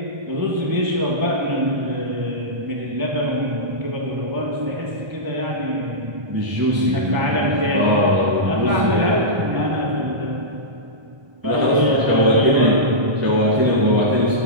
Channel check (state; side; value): late; left; 1.3 ms